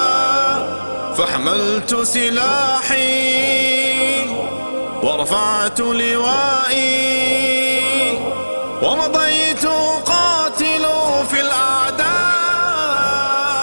فحملت سلاحي ورفعت لوائي ومضيت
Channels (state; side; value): inverted; both; correlation -1.00